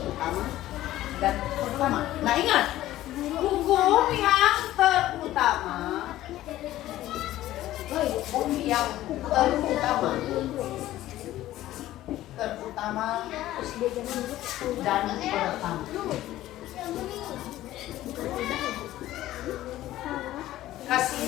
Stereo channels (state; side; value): quieter; right; 14.7 dB